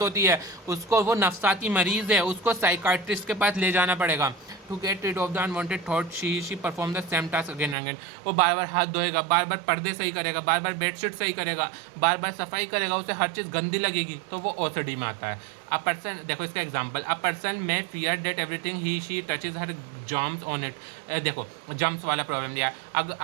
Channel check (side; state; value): left; drops out; at 7.8 s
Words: होती है, उसको, वो नफसाती मरीज़ है, उसको साइकाइट्रिस्ट के पास ले जाना पड़ेगा। To get rid of the unwanted thought she perform the same task again and again, वो बार बार हाथ धोएगा, बार बार पर्दे सही करेगा, बार बार बेडशीट सही करेगा, बार बार सफाई करेगा, उसे हर चीज़ गंदी लगेगी, तो वो OCD में आता है। अ पर्सन, देखो इसका एग्जांपल, अ पर्सन में fear that everything he she touches हर जम्स ऑन इट। देखो जम्स वाला प्रॉब्लम दिया,